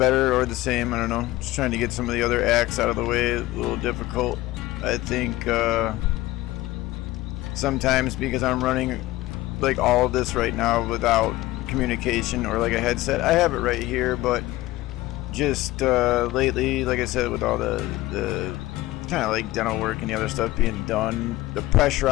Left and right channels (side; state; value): right; quieter; 17.4 dB